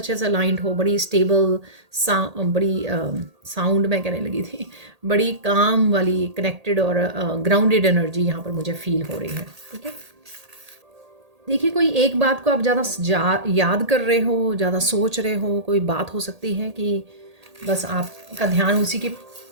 से अलाइंड हो, बड़ी स्टेबल बड़ी साउंड में कहने लगी थी, बड़ी काम वाली कनेक्टेड और ग्राउंडेड एनर्जी यहाँ पर मुझे फील हो रही है। ठीक है, देखिए, कोई एक बात को आप ज़्यादा याद कर रहे हो, ज़्यादा सोच रहे हो, कोई बात हो सकती है कि बस आपका ध्यान उसी के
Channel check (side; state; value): left; late; 1.8 ms